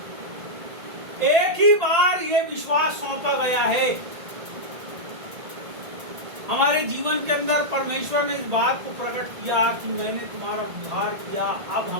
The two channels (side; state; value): left; late; 1.8 ms